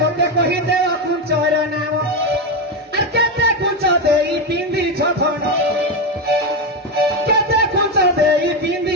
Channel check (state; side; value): normal; both; correlation 0.10